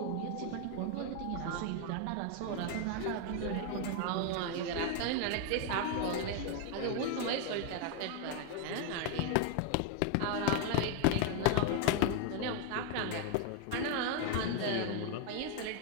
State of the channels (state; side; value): different; both; correlation 0.01